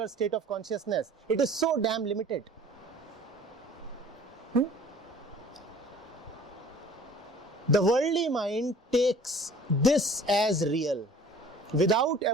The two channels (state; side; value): normal; both; correlation 0.49